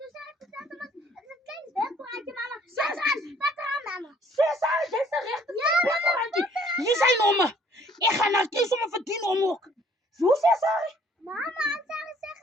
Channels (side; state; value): both; normal; correlation 0.59